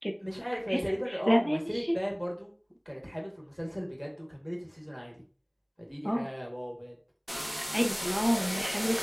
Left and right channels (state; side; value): identical; both; correlation 1.00